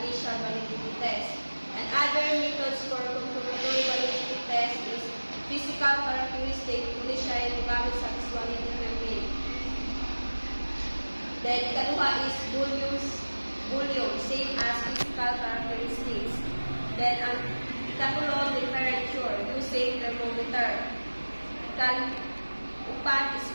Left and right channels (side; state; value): both; inverted; correlation -1.00